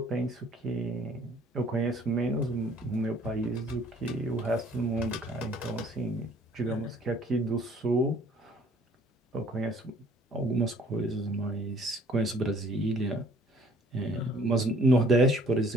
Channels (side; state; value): both; normal; correlation 0.57